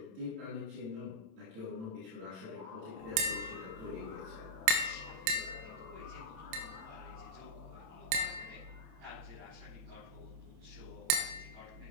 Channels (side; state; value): left; late; 27 ms